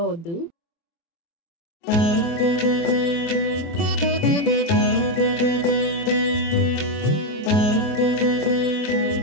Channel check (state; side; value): late; right; 24 ms